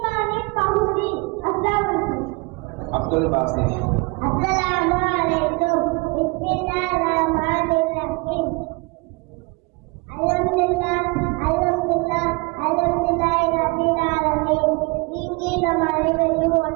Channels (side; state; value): left; quieter; 27.6 dB